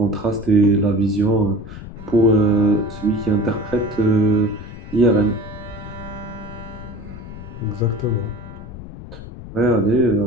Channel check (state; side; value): noise; left; rumble, 13 dB below the sound